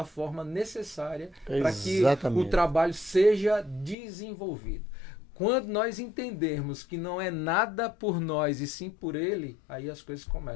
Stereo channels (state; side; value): drops out; right; at 4.0 s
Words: forma necessária, para que o trabalho seja desenvolvido. Quando nós entendermos que não é nada por nós e sim por Ele, aí as coisas